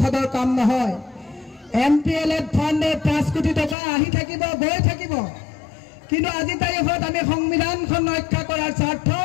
কাম নহয়। MPLA ফাণ্ডে 5 কোটি টকা আহি থাকিব, গৈ থাকিব, কিন্তু আজি তাৰিখত আমি সংবিধানখন ৰক্ষা কৰাৰ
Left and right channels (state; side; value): drops out; right; at 3.8 s